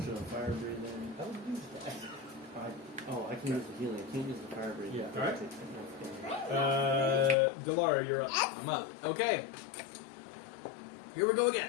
of fire breathing. I would use that. I can use the healing. I can't use the fire breathing. Yeah. Alright. Delara, you're up. I'm up. Okay. Here we go again.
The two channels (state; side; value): drops out; right; at 7.4 s